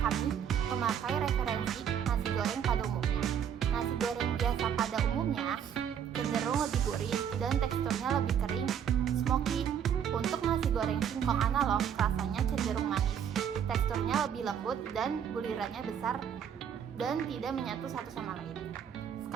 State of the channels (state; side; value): quieter; left; 8.5 dB